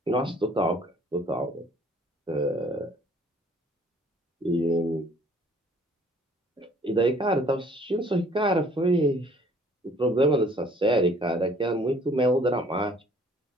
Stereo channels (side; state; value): both; normal; correlation 0.57